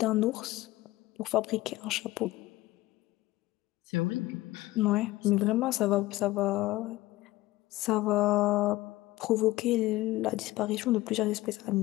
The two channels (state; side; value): quieter; right; 17.8 dB